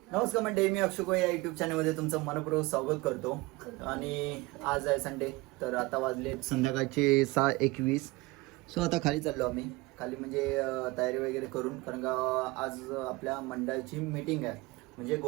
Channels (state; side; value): quieter; left; 22.3 dB